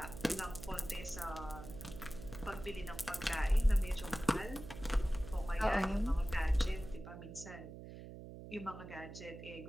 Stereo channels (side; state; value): right; noise; hum, 12 dB below the sound